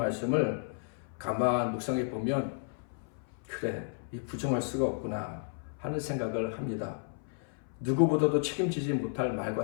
가만 묵상해 보면 그래, 이 부정할 수가 없구나 하는 생각을 합니다. 누구보다도 책임지지 못할 말과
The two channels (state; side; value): silent; right; 56 dB below the other